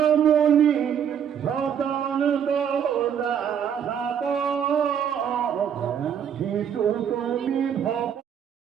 মুনি সতন শিশু তুমি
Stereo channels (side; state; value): left; quieter; 8.4 dB